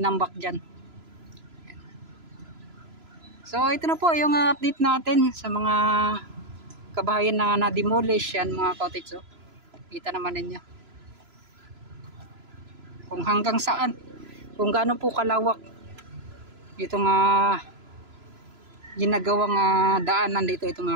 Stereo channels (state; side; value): late; left; 3.0 ms